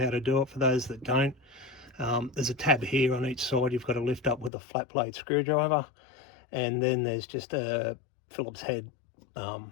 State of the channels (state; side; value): drops out; right; at 4.5 s